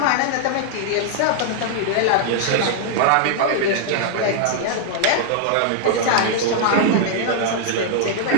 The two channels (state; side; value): different; both; correlation -0.01